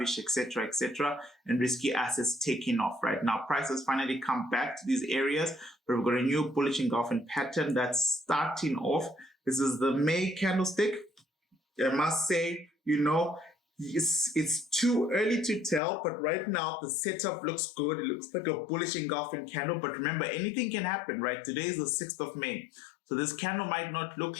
etc., and risky assets taking off. Right now, prices finally come back to these areas, but we've got a new bullish engulfing pattern that's starting off. This is the May candlestick. I must say, it's too early to tell, but right now the setup looks good. It looks like a bullish engulfing candle, but remember, anything can happen, right? Today is the 6th of May. So this candle might not look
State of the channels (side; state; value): right; drops out; at 15.8 s